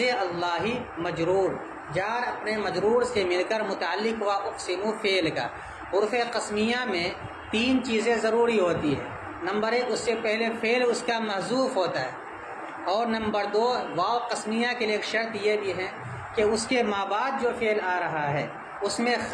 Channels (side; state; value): both; identical; correlation 1.00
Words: اللہ مجرور، جار اپنے مجرور سے مل کر متعلق ہوا اقسم فعل کا۔ حروف قسمیہ میں تین چیزیں ضروری ہوتی ہے، نمبر ایک اس سے پہلے فعل اس کا محذوف ہوتا ہے، اور نمبر دو واو قسمیہ کے لیے ایک شرط یہ بھی ہے کہ اس کے ما بعد جو فعل آ رہا ہے اس میں